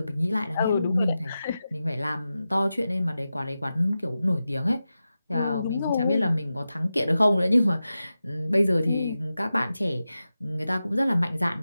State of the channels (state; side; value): inverted; both; correlation -0.92